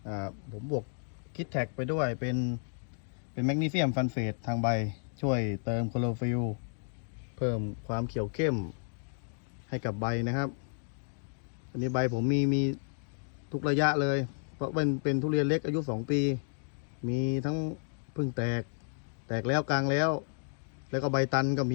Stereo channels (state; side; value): silent; right; digital silence